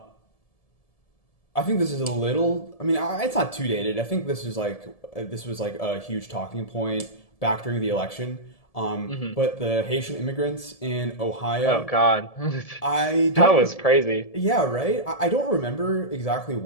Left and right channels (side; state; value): right; late; 1.7 ms